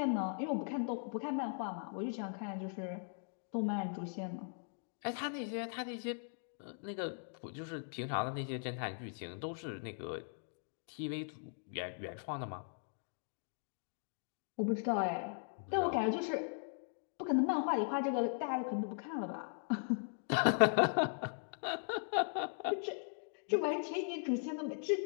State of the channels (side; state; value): right; silent; digital silence